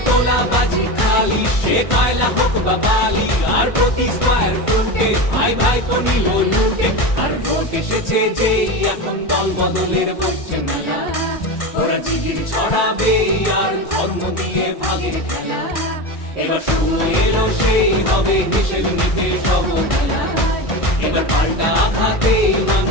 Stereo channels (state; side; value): late; right; 1.6 ms